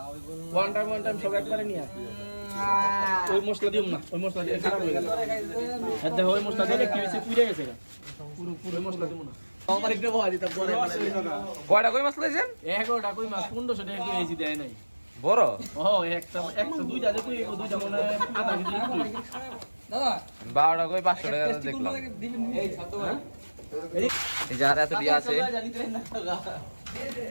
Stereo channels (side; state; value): both; inverted; correlation -1.00